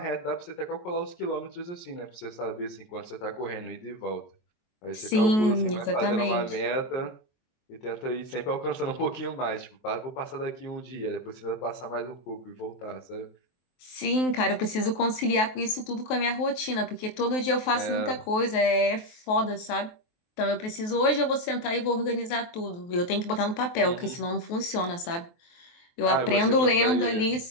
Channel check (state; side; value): late; right; 23 ms